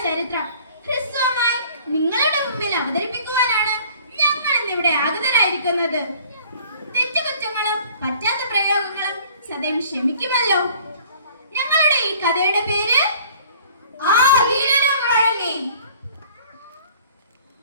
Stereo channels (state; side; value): inverted; both; correlation -0.52